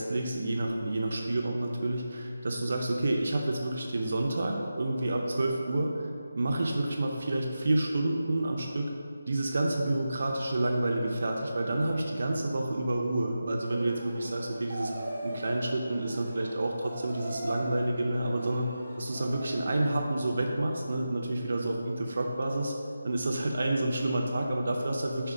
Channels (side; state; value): both; inverted; correlation -0.92